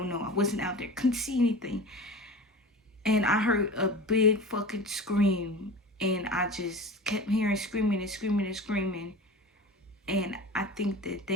wasn't out there. Couldn't see anything. And I heard a big fucking scream. And I just kept hearing screaming and screaming and screaming. And I think that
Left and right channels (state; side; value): normal; both; correlation 0.33